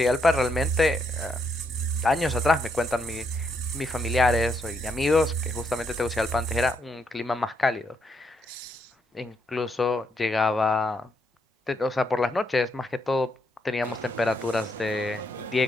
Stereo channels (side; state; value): both; normal; correlation 0.77